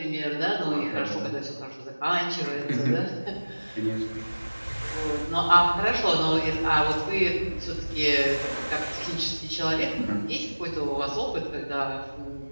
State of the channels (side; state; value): both; inverted; correlation -1.00